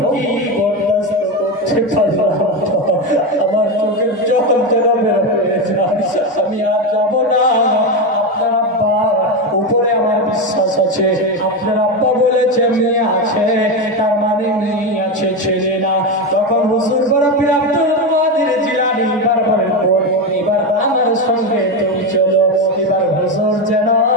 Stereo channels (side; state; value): both; normal; correlation 0.14